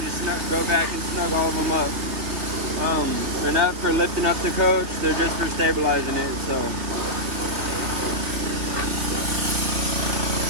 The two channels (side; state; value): left; late; 3.1 ms